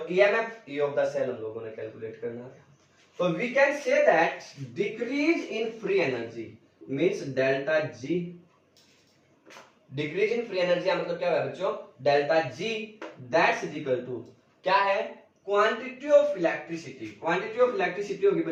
EMF, E of the cell हम लोगों ने कैलकुलेट करना है। तो we can say that decrease in free energy means delta G। Decrease in free energy मतलब क्या है बच्चों, delta G that's is equal to क्या है, quantity of electricity. Quantity of electricity होगी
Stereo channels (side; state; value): both; identical; correlation 1.00